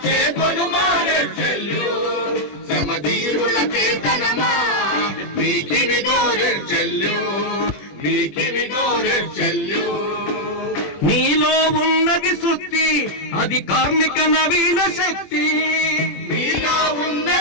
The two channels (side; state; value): right; late; 21 ms